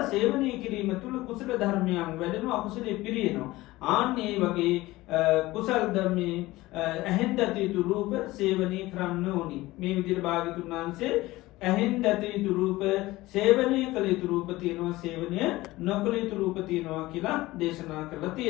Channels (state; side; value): quieter; right; 18.7 dB